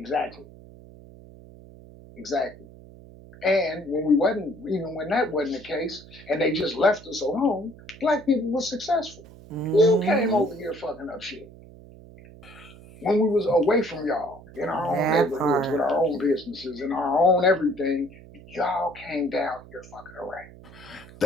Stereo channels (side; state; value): right; noise; hum, 20 dB below the sound